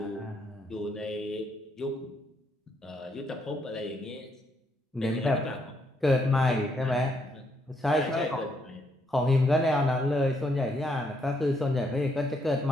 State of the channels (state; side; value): normal; both; correlation 0.74